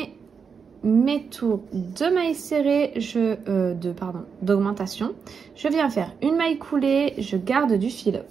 mes tours de mailles serrées, d'augmentation. Je viens faire une maille coulée, je garde du fil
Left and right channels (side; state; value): left; quieter; 6.0 dB